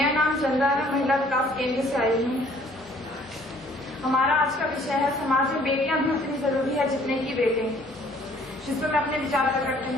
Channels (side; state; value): both; normal; correlation 0.58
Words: नाम चंदा है, महिला विकास केंद्र से आई हूँ। हमारा आज का विषय है समाज में बेटियां भी उतनी जरूरी है जितने की बेटे, जिस पर मैं अपने विचार प्रकट